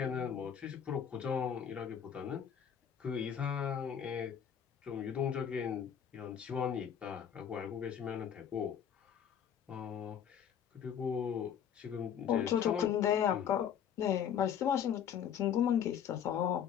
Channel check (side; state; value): right; quieter; 8.6 dB